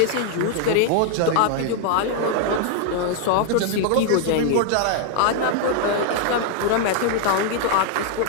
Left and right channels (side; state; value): both; different; correlation 0.00